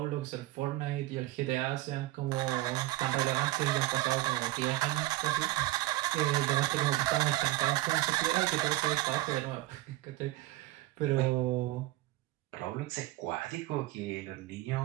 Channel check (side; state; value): left; quieter; 17.5 dB